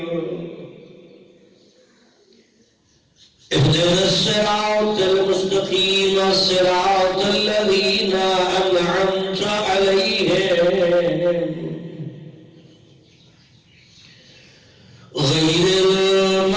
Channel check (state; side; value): identical; both; correlation 1.00